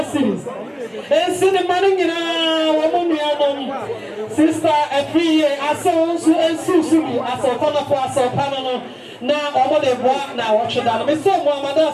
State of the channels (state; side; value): identical; both; correlation 1.00